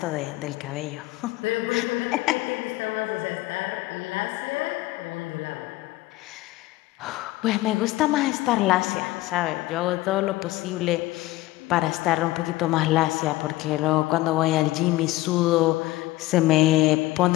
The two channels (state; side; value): quieter; right; 18.3 dB